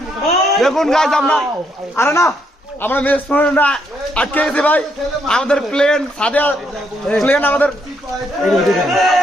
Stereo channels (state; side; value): normal; both; correlation 0.74